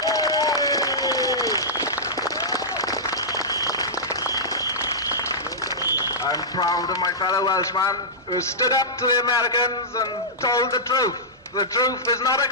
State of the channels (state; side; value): normal; both; correlation -0.14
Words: I'm proud of my fellow Welshman who stood up to the Americans and told the truth. The truth is not a